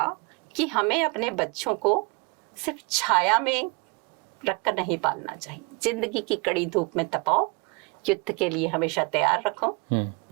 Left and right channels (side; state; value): left; quieter; 29.7 dB